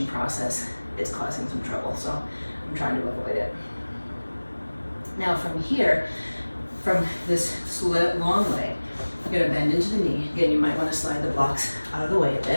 process, it's causing some trouble, so I'm trying to avoid it. Now from here, from this long leg, you're gonna bend into the knee. Again, you might wanna slide the blocks out of the way a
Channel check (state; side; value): inverted; both; correlation -1.00